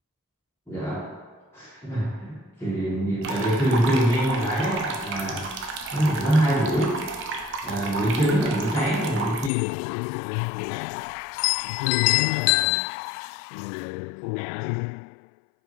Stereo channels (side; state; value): right; drops out; at 9.5 s